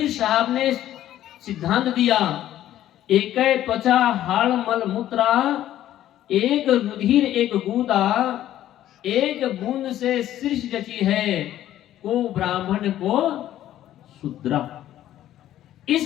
साहब ने सिद्धांत दिया, एक त्वचा हाड़ मल मूत्रा, एक रुधिर एक गूदा, एक बूंद से सृष्टि रची है, को ब्राह्मण को शूद्रा।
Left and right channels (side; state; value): right; quieter; 12.6 dB